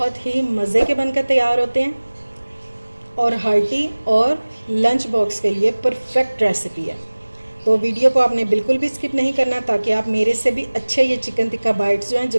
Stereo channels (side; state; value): both; inverted; correlation -1.00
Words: ही मज़े के बनकर तैयार होते हैं और हार्टी और लंच बॉक्स के लिए परफेक्ट रेसिपी है। तो वीडियो को आपने बिल्कुल भी स्किप नहीं करना, ताकि आप मेरे से भी अच्छे ये चिकन टिक्का बाइट्स जो हैं